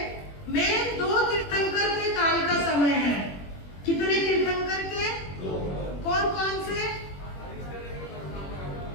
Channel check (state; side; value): late; right; 21 ms